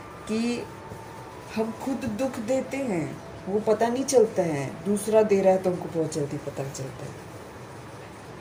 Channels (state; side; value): identical; both; correlation 1.00